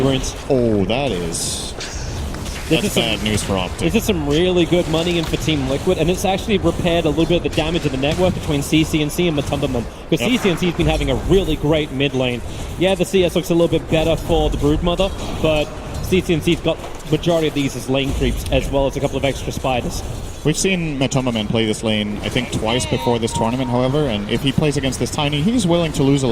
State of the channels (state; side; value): identical; both; correlation 1.00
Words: Oh, that's bad news for Optic. This is some really good money in for Team Liquid, and it's actually repaired a little bit of the damage of the network between CCNC and Matumbaman, because CCNC's been having a really great mid lane. Yeah, the CS looks a little bit better for the Broodmother, but CCNC's got majority of these as lane creeps, as well as a couple of extra spiders. We've seen Matumbaman play this lane, I think, twice before this tournament, however, and if he plays against this Tiny, he's willing to lose a